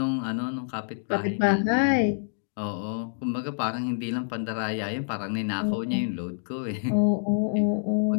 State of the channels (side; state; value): right; silent; digital silence